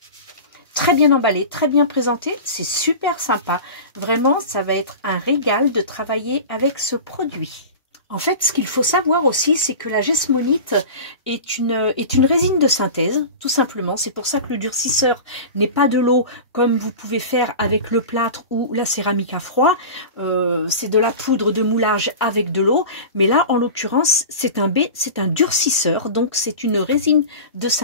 Très bien emballé, très bien présenté, c'est super sympa. Vraiment, ça va être un régal de travailler avec ce produit. En fait, ce qu'il faut savoir aussi, c'est que la Jesmonite est une résine de synthèse, tout simplement. C'est pour ça que le durcisseur n'est pas de l'eau comme vous pouvez faire avec le plâtre ou la céramique à froid. C'est de la poudre de moulage avec de l'eau. Mais là, en l'occurrence, c'est un durcisseur. Donc, c'est une résine de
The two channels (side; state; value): both; inverted; correlation -0.32